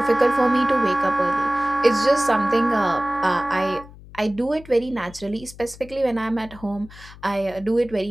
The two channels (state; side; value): noise; left; hum, 19 dB below the sound